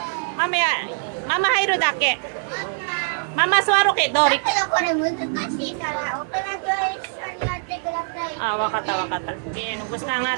Mama hayro dake. Mama suwaro ke dori. Ah, wakata. Okay, nubos na ang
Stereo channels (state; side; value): silent; left; 63 dB below the other